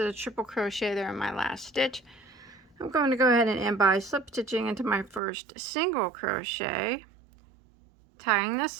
a triple crochet there in my last stitch. I'm going to go ahead and end by slip stitching into my first single crochet, tying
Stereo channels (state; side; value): drops out; left; at 5.2 s